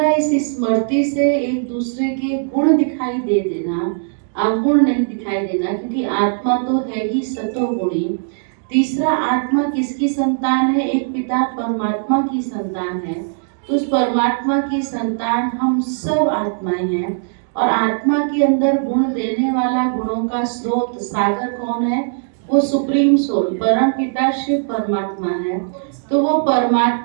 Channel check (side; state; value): left; silent; digital silence